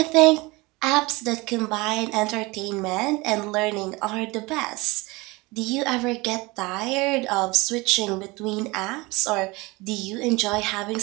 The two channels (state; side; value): quieter; left; 23.5 dB